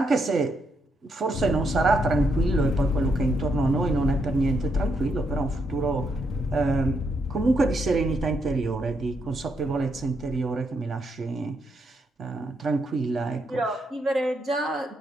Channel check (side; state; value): both; normal; correlation 0.78